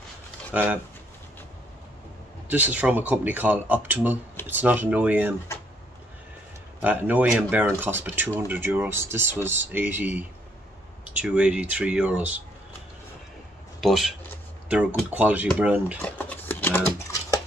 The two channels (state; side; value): normal; both; correlation 0.69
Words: This is from a company called Optimal. It's not an OEM. An OEM bearing cost about €200. This was 82, 83 euros. But they're a good quality brand. And